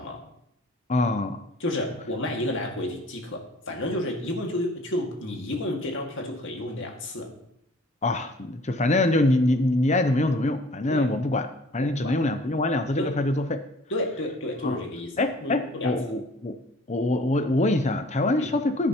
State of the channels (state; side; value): normal; both; correlation 0.52